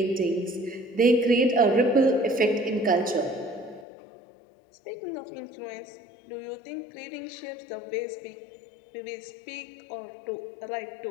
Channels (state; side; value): drops out; right; at 3.9 s